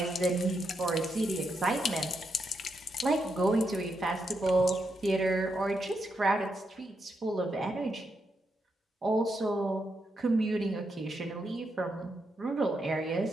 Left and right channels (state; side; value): normal; both; correlation 0.82